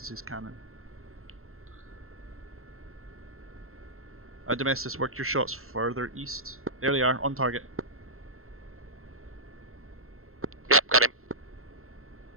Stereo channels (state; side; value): late; left; 0.62 ms